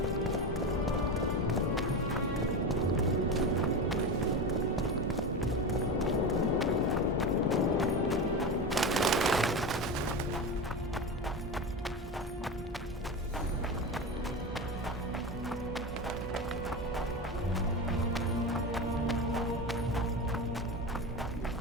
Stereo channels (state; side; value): normal; both; correlation 0.22